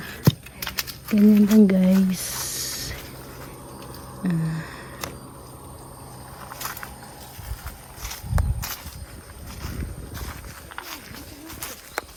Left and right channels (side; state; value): both; identical; correlation 1.00